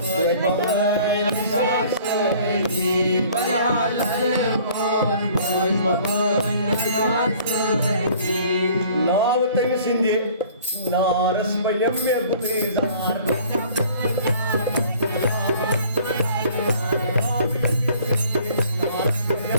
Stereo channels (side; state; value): both; inverted; correlation -0.53